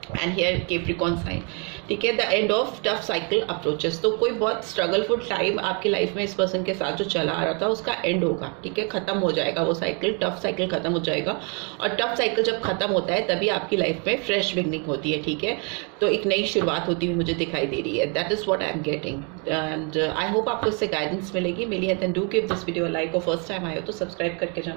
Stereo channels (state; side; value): quieter; left; 35.6 dB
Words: एंड हियर कैप्रिकॉर्न साइन, ठीक है। The end of tough cycle approaches, तो कोई बहुत स्ट्रगलफुल टाइम आपकी लाइफ में इस पर्सन के साथ जो चला आ रहा था उसका एंड होगा, ठीक है। खत्म हो जाएगा वो साइकिल, टफ साइकिल खत्म हो जाएगा, और टफ साइकिल जब खत्म होता है तभी आपकी लाइफ में फ्रेश बिगनिंग होती है, ठीक है। तो एक नई शुरुआत होती हुई मुझे दिखाई दे रही है, that is what I am getting, and I hope आपको इससे गाइडेंस मिलेगी, मिली है। Then do give this video like, और फर्स्ट टाइम आए हो तो सब्सक्राइब करके